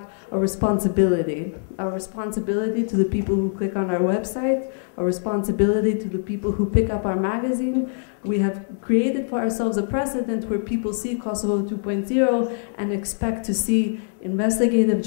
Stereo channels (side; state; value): right; silent; 63 dB below the other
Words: a responsibility to the people who click on our website, a responsibility to the people who pick up our magazine. We have created for ourselves a precedent where people see Kosovo 2.0 and expect to see investigative